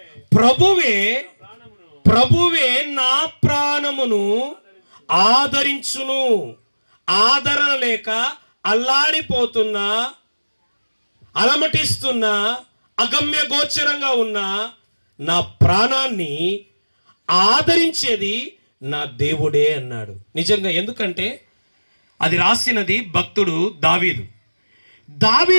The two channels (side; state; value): both; inverted; correlation -1.00